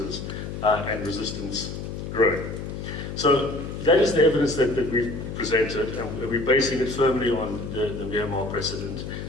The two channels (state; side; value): noise; left; hum, 7 dB below the sound